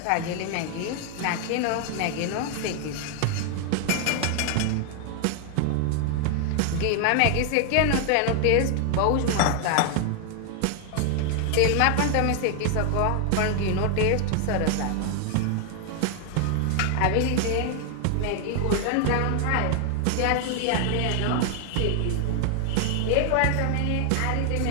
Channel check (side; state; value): both; different; correlation 0.00